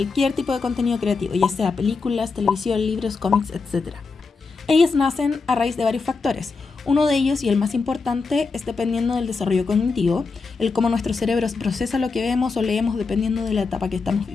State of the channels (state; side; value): quieter; right; 4.4 dB